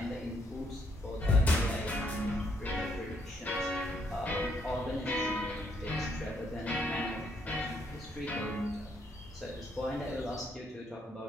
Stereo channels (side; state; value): both; normal; correlation 0.72